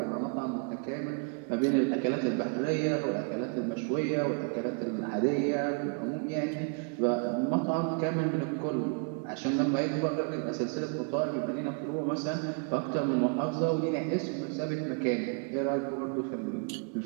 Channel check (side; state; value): left; quieter; 36.7 dB